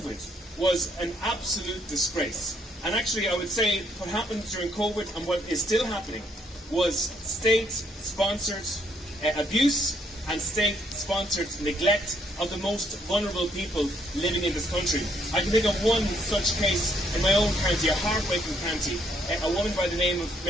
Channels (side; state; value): both; normal; correlation 0.70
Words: was an absolute disgrace. And actually, I would say what happened during COVID and what is still happening was state-sponsored abuse and state-sponsored neglect of the most vulnerable people living in this country. I can think of one such case in my own county, a heartbreaking county. A woman by the name of